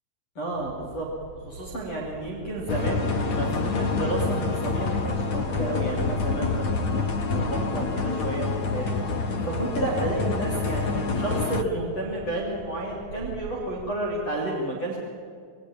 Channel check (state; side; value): late; right; 9.1 ms